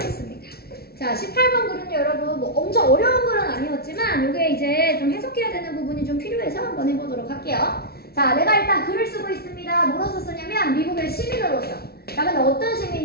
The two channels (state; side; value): late; right; 0.45 ms